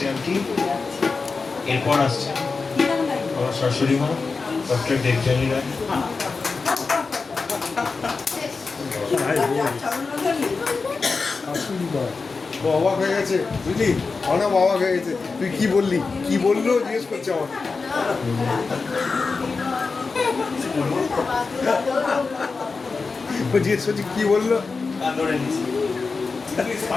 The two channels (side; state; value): right; quieter; 4.4 dB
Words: আন্টি। এরপর আসছে আমার শাশুড়ি মা ডক্টর দেবযানী রায়। অবাক হয়ে গেছে বুঝলি, অনেক অবাক হয়ে গেছে। তুই কি বললি, কি বললো জিজ্ঞেস করছে আমার। জিজ্ঞেস করছি কি বললো,